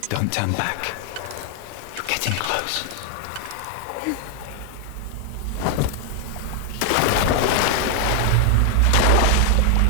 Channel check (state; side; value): different; both; correlation 0.00